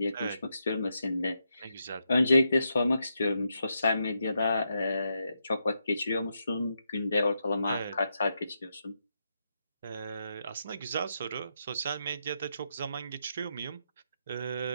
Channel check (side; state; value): both; inverted; correlation -0.83